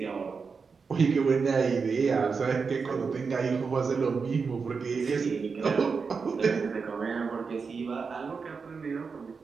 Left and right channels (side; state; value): left; quieter; 5.2 dB